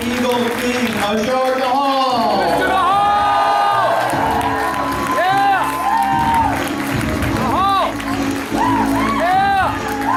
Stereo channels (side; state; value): both; identical; correlation 1.00